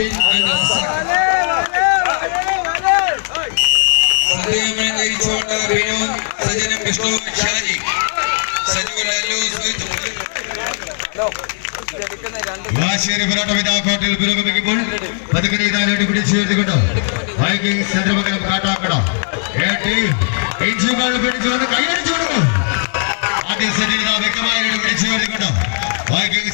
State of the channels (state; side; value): silent; right; 68 dB below the other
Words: and Razak. സദ്യയുമായി നയിച്ചുകൊണ്ട് Binu സജനും Vishnu Shaji വാശിയേറിയ പോരാട്ടം ഇതാ കോട്ടയിൽ പുരോഗമിക്കുമ്പോൾ പതുക്കെ ഇതാലോട്ട് പിടിച്ചു ചേർത്തുകൊണ്ട് വൈകിങ്സ് ചന്ദ്രമംഗലം കാട്ടാക്കട ഇഞ്ചുകൾ പിടിച്ചു വന്ന് കൈയടിച്ചു കൊടുക്കും. ആദ്യ സെറ്റിൽ ഇതാ വ്യക്തമായിട്ട് പിടിച്ചു ചേർത്തുകൊണ്ട്